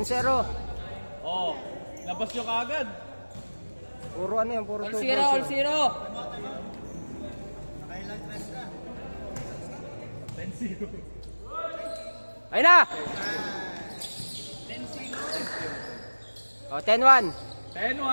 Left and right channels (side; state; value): both; inverted; correlation -1.00